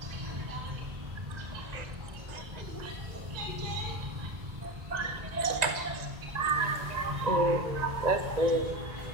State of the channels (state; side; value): late; left; 1.9 ms